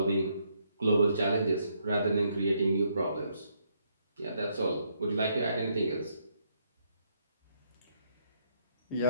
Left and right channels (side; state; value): both; inverted; correlation -0.74